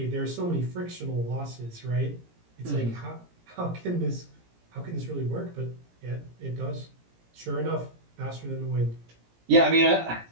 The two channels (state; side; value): late; left; 17 ms